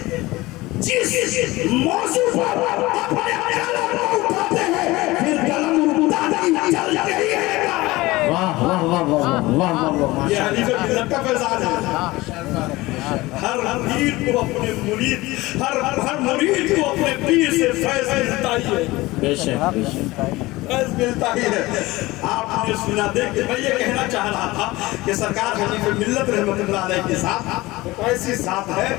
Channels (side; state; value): right; quieter; 20.0 dB